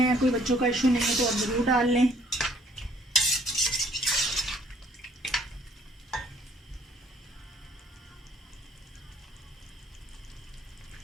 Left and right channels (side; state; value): both; normal; correlation 0.62